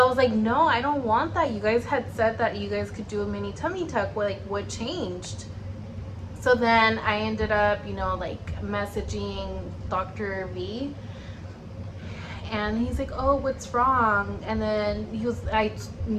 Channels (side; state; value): both; identical; correlation 1.00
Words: I was like, no, I don't want that. You guys had said that you guys could do a mini tummy tuck. Like, what changed? So then I ended up, you know, like messaging Dr. V, and he's like, oh, what's wrong? And then I,